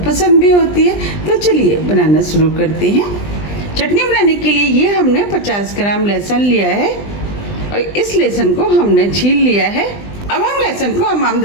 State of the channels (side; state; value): right; late; 20 ms